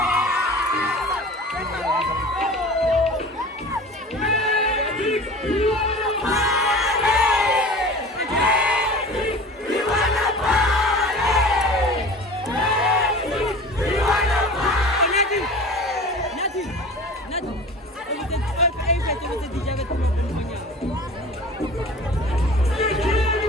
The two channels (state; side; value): normal; both; correlation 0.39